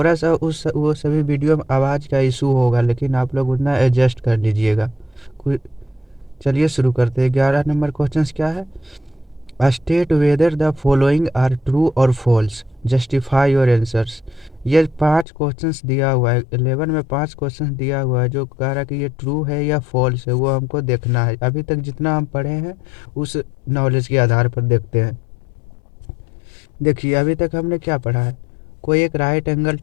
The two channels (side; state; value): right; drops out; at 15.2 s